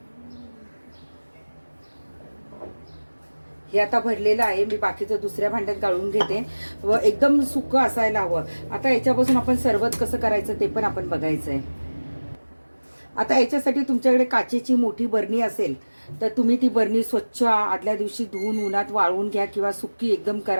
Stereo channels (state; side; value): inverted; both; correlation -1.00